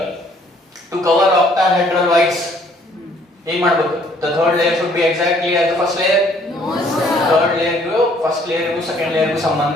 ಟು ಕವರ್ ಆಕ್ಟಾಹೆಡ್ರಲ್ ವೈಡ್ಸ್ ಏನ್ ಮಾಡ್ಬೇಕು? The third layer should be exactly as the first layer. No sir. Third layer ಗೂ first layer ಗೂ second layer ಗೂ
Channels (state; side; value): normal; both; correlation 0.61